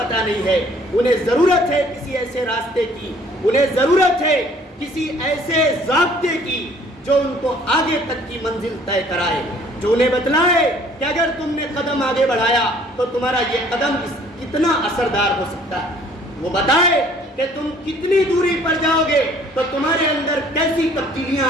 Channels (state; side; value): normal; both; correlation 0.57